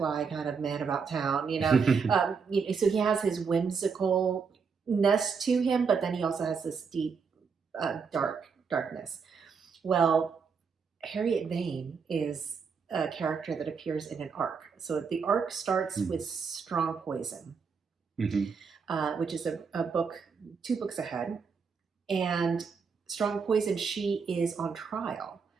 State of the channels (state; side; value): quieter; left; 5.7 dB